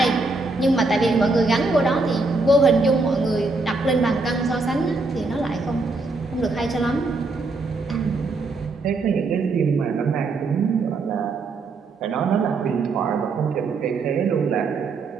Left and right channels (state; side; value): quieter; left; 3.6 dB